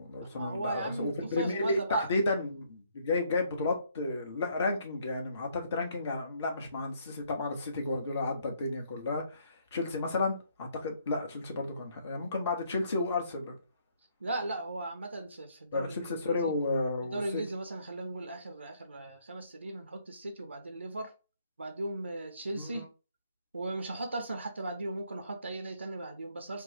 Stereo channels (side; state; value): both; inverted; correlation -0.68